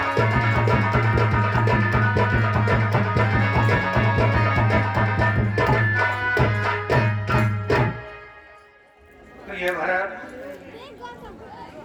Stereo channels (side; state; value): both; identical; correlation 1.00